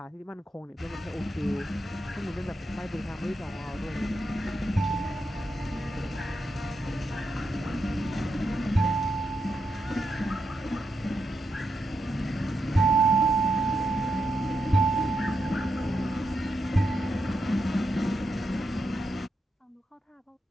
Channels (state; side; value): normal; both; correlation 0.84